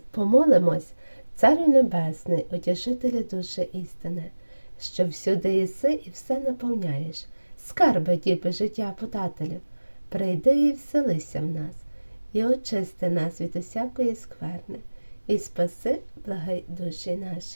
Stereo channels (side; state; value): both; inverted; correlation -1.00